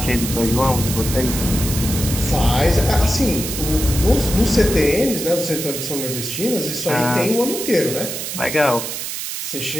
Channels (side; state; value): right; noise; hiss, 5 dB below the sound